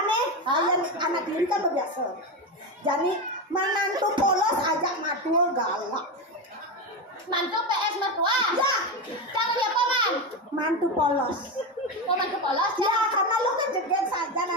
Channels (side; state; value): both; normal; correlation 0.15